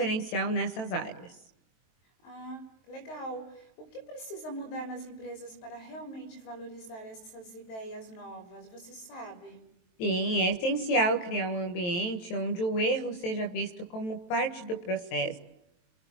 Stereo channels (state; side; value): late; right; 23 ms